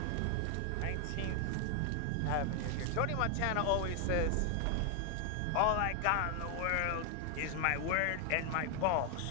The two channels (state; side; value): different; both; correlation 0.00